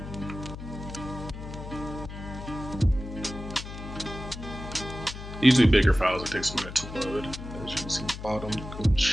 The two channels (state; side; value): noise; left; hum, 10 dB below the sound